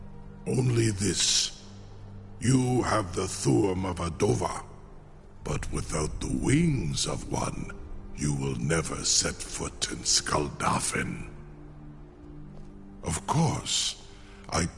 Only this. You have the Thuum of Adova. But without the wings of one, you will never set foot in Skuldafn. Of course, I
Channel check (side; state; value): both; identical; correlation 1.00